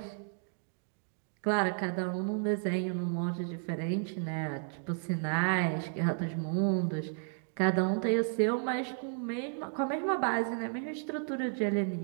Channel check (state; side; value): silent; left; 56 dB below the other